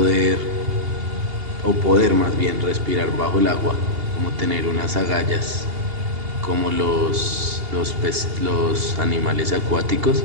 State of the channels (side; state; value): left; late; 2.8 ms